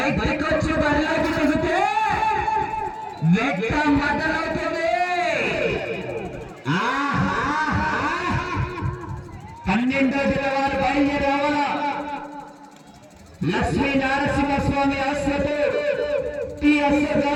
వచ్చి బరిలోకి దిగితే వేట మొదలవుతుంది. 12వ జిల్లా బయలుదేరావాలా లక్ష్మీ నారసింహస్వామి ఆశ్రతో టీఎస్ఆర్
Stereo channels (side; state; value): both; identical; correlation 1.00